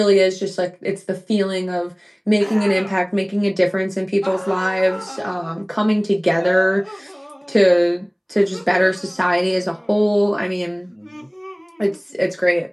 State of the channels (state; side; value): identical; both; correlation 1.00